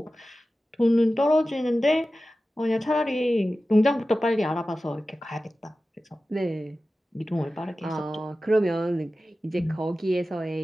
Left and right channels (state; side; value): normal; both; correlation 0.95